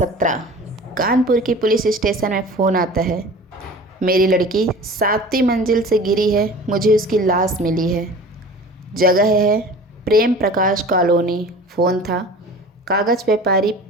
कानपुर की पुलिस स्टेशन में फ़ोन आता है। मेरी लड़की 7वीं मंजिल से गिरी है, मुझे उसकी लाश मिली है। जगह है प्रेम प्रकाश कॉलोनी। फ़ोन था कागज़ व्यापारी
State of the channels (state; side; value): normal; both; correlation 0.40